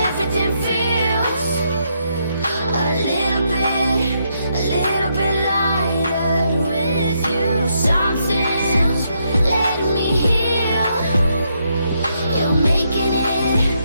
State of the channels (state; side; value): inverted; both; correlation -0.77